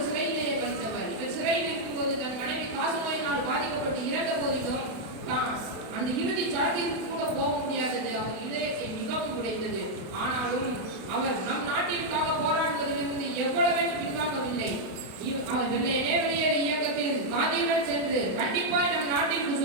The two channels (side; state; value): left; late; 32 ms